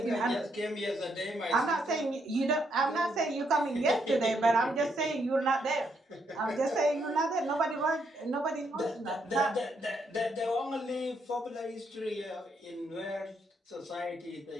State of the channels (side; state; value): both; normal; correlation 0.76